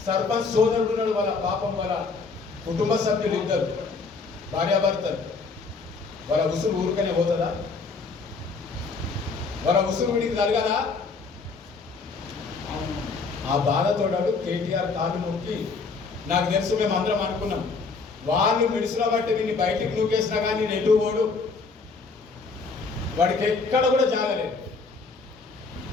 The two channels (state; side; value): quieter; right; 4.4 dB